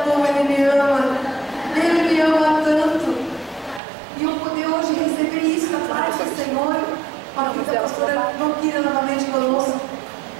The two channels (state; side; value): drops out; left; at 3.8 s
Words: como Ele me ama. Ele me ama tanto. E eu poder hoje receber isso da parte do Senhor, com a vida da pastora Valquíria novamente conosco.